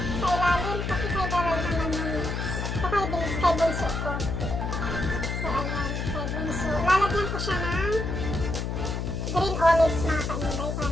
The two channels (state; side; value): noise; left; hum, 2 dB below the sound